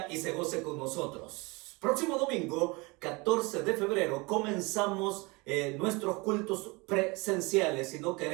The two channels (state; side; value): quieter; left; 26.2 dB